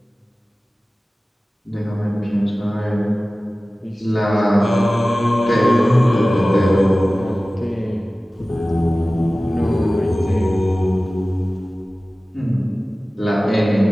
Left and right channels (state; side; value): normal; both; correlation 0.97